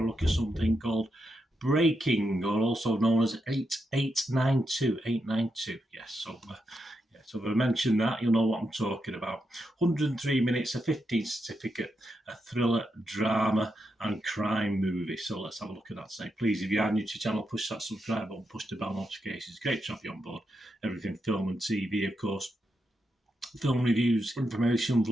to look at something called Breaking, or also known as 892. 892, yes. So if I mention that, you'll know what I'm talking about. 103 minutes, a 15 certificate, a thriller, drama, and crime movie. So let's have a look at that today. Please, if you are new to the channel, push that subscribe button, push the bell notifications. Great to have you on board. Everything film and TV, of course. Film reviews, information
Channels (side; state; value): both; normal; correlation 0.84